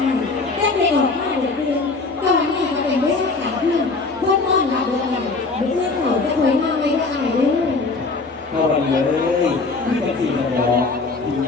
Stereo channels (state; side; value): quieter; right; 3.8 dB